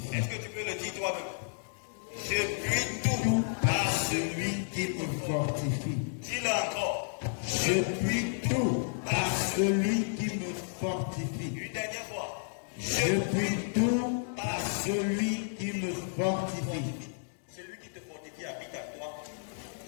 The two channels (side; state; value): right; silent; digital silence